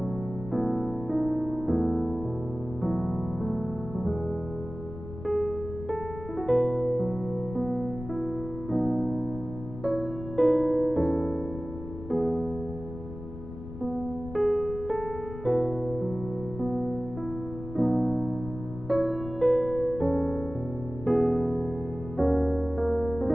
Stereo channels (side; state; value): left; noise; rumble, 11 dB below the sound